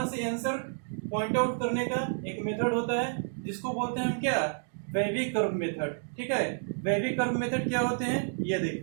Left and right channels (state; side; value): silent; left; digital silence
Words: से आंसर पॉइंट आउट करने का एक मेथड होता है जिसको बोलते हैं हम क्या, वेवी कर्व मेथड, ठीक है। वेवी कर्व मेथड क्या होते हैं ये